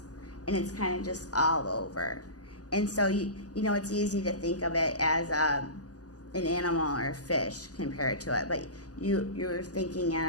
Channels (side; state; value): right; late; 0.67 ms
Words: And it's kind of just all over. And so, it's easy to think of it as an animal or a fish compared to it. But you're thinking